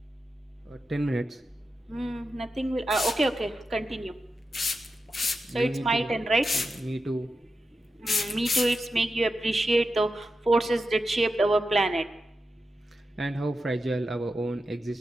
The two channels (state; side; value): normal; both; correlation 0.90